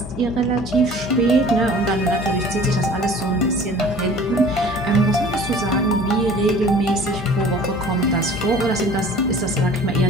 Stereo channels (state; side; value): noise; left; hum, 17 dB below the sound